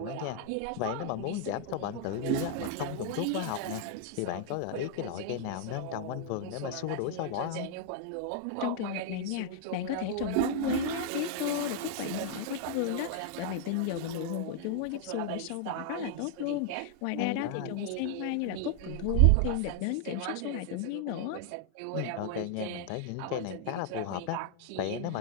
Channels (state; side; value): different; both; correlation 0.00